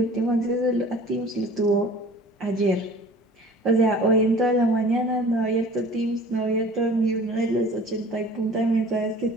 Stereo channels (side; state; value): both; normal; correlation 0.45